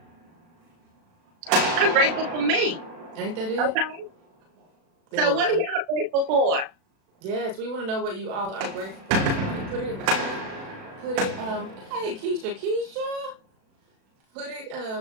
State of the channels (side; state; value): left; late; 36 ms